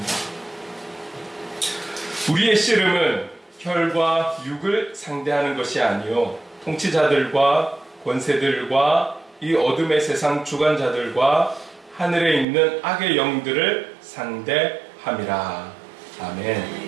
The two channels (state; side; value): drops out; left; at 12.5 s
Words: 우리의 씨름은 혈과 육을 상대하는 것이 아니요 통치자들과 권세들과 이 어둠의 세상 주관자들과 하늘에 있는 악의 영들을 상대함이라.